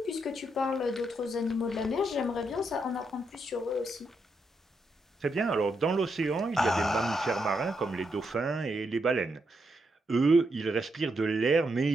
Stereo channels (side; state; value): both; normal; correlation 0.81